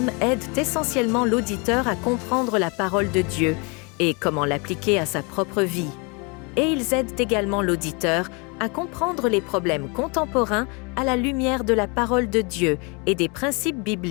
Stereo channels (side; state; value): right; quieter; 31.5 dB